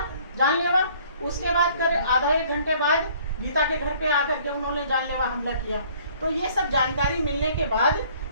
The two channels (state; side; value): inverted; both; correlation -0.57